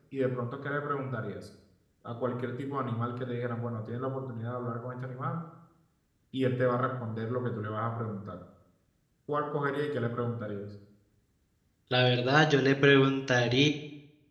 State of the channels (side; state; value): both; identical; correlation 1.00